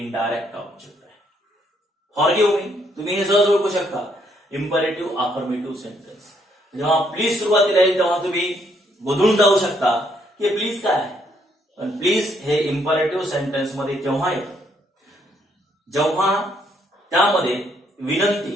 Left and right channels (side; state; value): both; normal; correlation 0.71